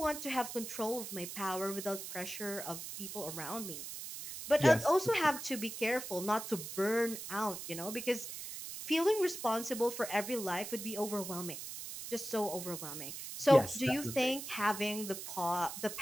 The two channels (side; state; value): right; noise; hiss, 8 dB below the sound